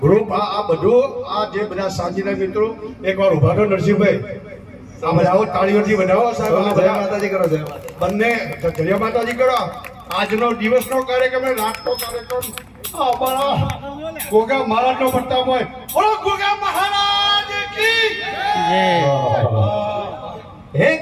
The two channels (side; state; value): both; identical; correlation 1.00